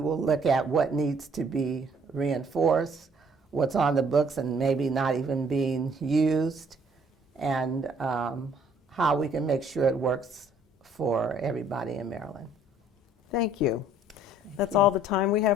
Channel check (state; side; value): normal; both; correlation 0.60